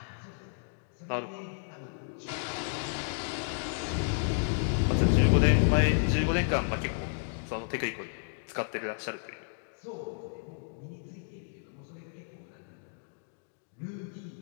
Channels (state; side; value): silent; right; digital silence